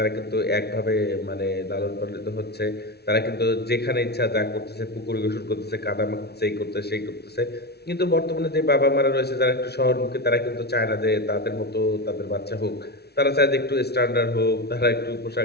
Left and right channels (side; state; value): right; late; 0.48 ms